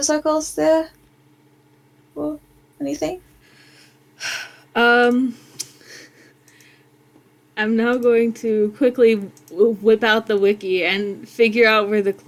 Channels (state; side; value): identical; both; correlation 1.00